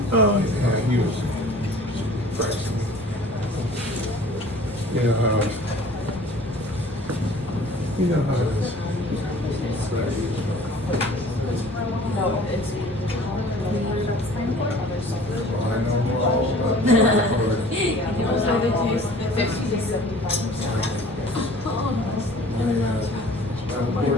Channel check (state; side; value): normal; both; correlation 0.48